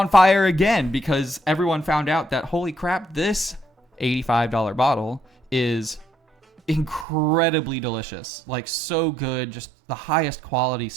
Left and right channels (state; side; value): drops out; left; at 7.1 s